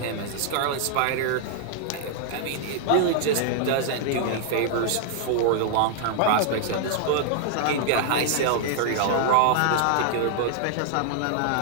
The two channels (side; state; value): both; different; correlation -0.01